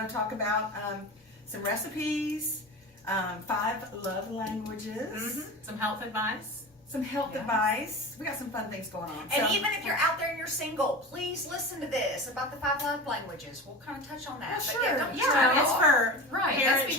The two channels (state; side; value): normal; both; correlation 0.30